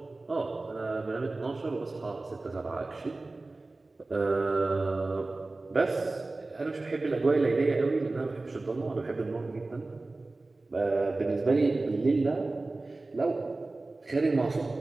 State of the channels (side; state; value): left; quieter; 3.2 dB